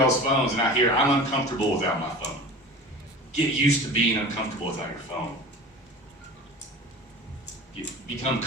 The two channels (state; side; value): normal; both; correlation 0.37